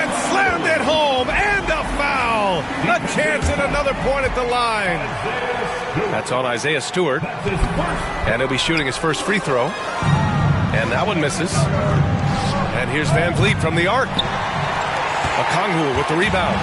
slammed it home. And a foul. A chance at another point at the line. That's on Isaiah Stewart. And he'll be shooting his first free throw. And that one misses. And here's Van Vliet from the arc. Okongwu with the rebound.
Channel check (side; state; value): both; identical; correlation 1.00